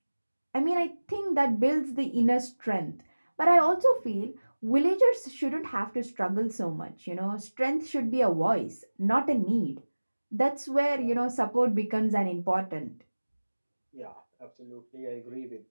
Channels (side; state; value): both; inverted; correlation -1.00